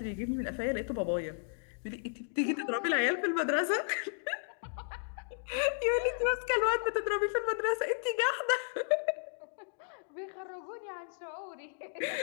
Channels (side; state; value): right; silent; digital silence